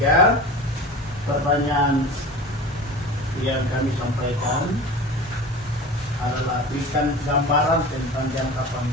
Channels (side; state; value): both; normal; correlation 0.35